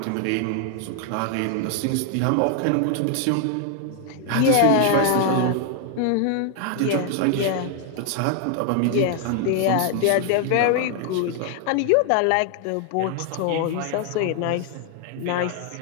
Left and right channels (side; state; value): both; different; correlation 0.00